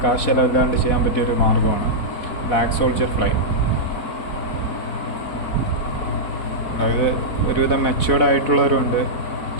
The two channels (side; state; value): right; late; 4.1 ms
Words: കാശ് ചിലവില്ലാണ്ട് ചെയ്യാൻ പറ്റിയൊരു മാർഗ്ഗമാണ് ബ്ലാക്ക് സോൾജർ ഫ്ലൈ. അതായത് ഒരുവിധം മെച്യൂർഡ് ആയിട്ടുള്ളവരുണ്ട്,